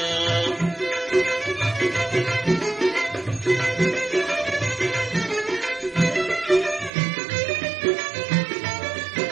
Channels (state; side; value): drops out; left; at 6.9 s